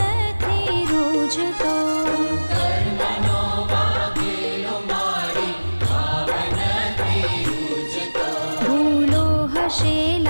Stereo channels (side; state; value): both; inverted; correlation -1.00